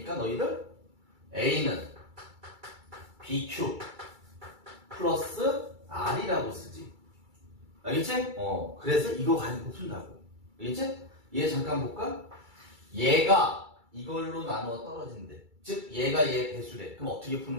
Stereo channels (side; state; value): left; late; 2.3 ms